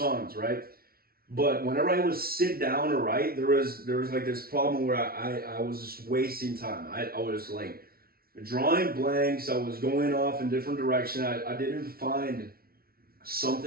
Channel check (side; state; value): left; late; 0.44 ms